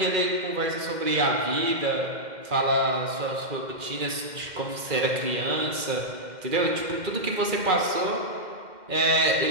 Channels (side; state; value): left; late; 2.1 ms